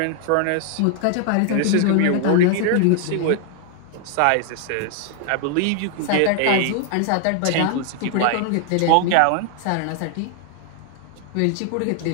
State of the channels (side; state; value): both; different; correlation 0.00